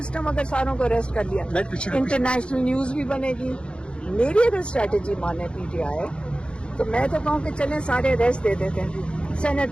اگر ساروں کو اریسٹ کر لیا. انٹرنیشنل نیوز بھی بنے گی, میری اگر اسٹریٹجی مانے پی ٹی آئی تو میں تو کہوں کہ چلیں سارے ریسٹ دے دیتے ہیں,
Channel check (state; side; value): late; right; 0.056 ms